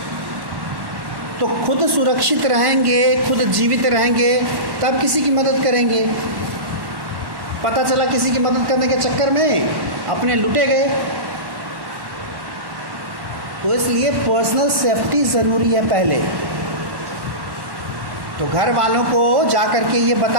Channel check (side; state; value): left; late; 1.1 ms